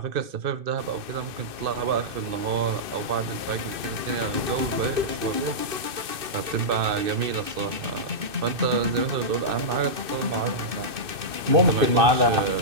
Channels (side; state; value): left; late; 2.6 ms